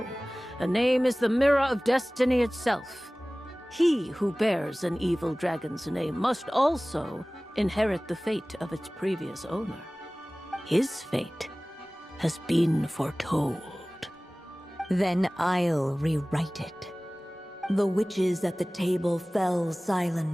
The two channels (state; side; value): normal; both; correlation 0.98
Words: a name is the mirror of destiny itself. He who bears an evil dragon's name must also inherit the fate of its previous owner. His fate has been foretold. Then I'll rewrite it. The witches at the table fell